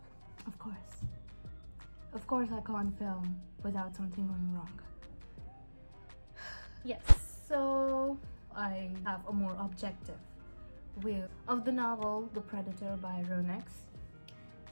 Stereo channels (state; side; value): inverted; both; correlation -1.00